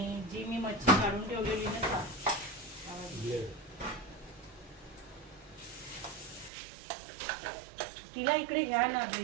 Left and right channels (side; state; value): left; drops out; at 6.5 s